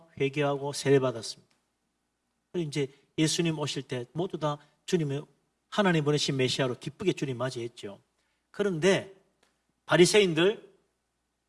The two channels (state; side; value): identical; both; correlation 1.00